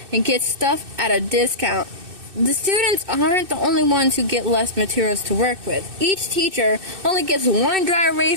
and gets stuff at a discount. The students aren't the only ones who get less materials to work with. Each teacher only gets 1 dry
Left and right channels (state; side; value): late; left; 2.6 ms